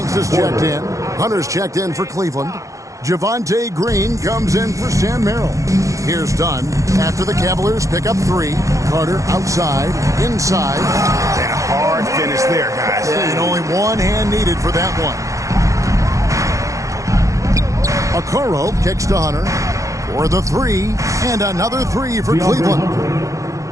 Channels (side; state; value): left; late; 0.15 ms